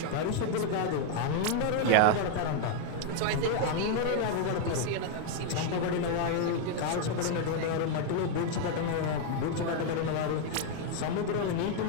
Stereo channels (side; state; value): both; different; correlation 0.00